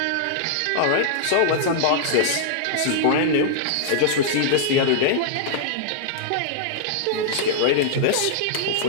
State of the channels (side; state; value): both; different; correlation -0.01